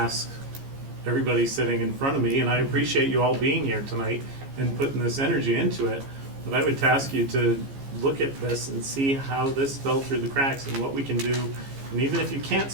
everybody sitting in front of me, and I appreciate you all being here tonight and putting this energy into it, but I would task you to look at this and see how this fell through the cracks and what we can do, and even if you can't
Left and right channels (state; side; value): late; left; 15 ms